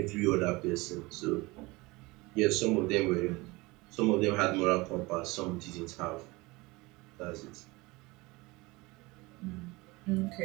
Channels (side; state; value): left; quieter; 23.1 dB